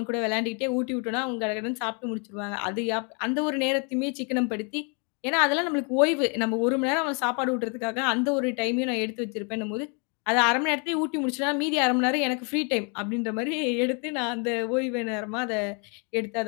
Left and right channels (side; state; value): right; quieter; 36.0 dB